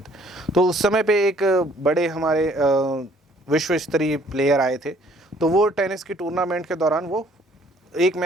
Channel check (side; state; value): both; normal; correlation 0.60